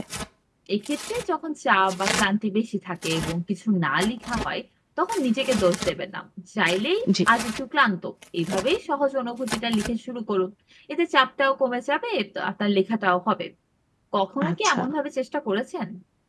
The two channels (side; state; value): both; identical; correlation 1.00